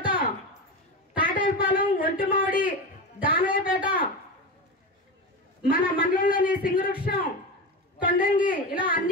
తాటేపాలెం, ఒంటిమామిడి, దానయ్యపేట, మన మండలంలోని సింగవృక్షం, కొండంగి ఇలా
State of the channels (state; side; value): normal; both; correlation 0.21